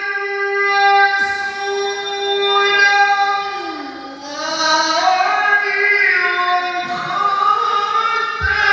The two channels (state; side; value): identical; both; correlation 1.00